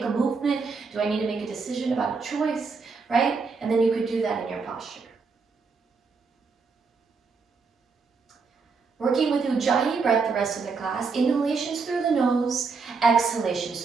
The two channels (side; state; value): left; quieter; 4.8 dB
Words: a movement? Do I need to make a decision about a choice, right? And then you could do that in your posture. Working with Ujjayi breath the rest of the class, inhalations through the nose, exhalations